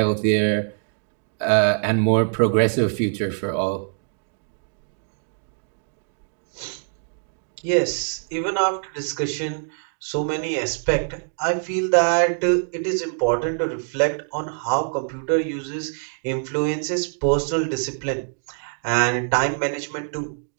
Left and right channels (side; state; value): left; silent; 62 dB below the other